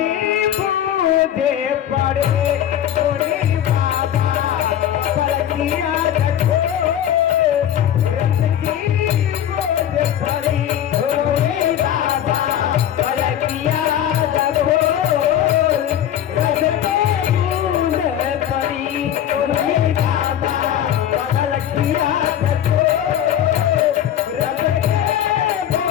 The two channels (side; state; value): right; quieter; 10.6 dB